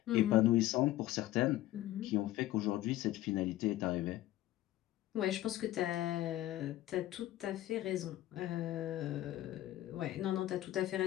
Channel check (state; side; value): quieter; right; 14.9 dB